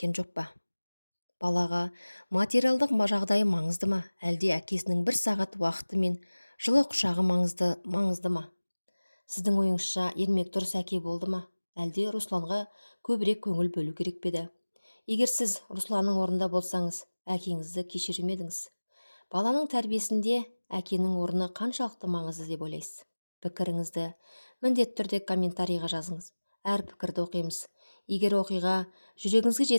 жоқ па? Балаға материалдық жағдайы маңызды ма, әлде әкесінің бір сағат уақыты мен жылы құшағы маңызды ма? Сіздің ойыңызша Ермек дұрыс әке болды ма, әлде Русланға көбірек көңіл бөлу керек пе еді? Егер сіз Русланның орнында болсаңыз, әкеңізді кешірер ме едіңіз? Баланың тәрбиесінде әкенің орны қаншалықты маңызды деп ойлайсыз? Пікіріңізді міндетті түрде комментарийға жазыңыз. Әр пікірді оқимыз. Егер оқиға жүрегіңізге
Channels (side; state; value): both; inverted; correlation -1.00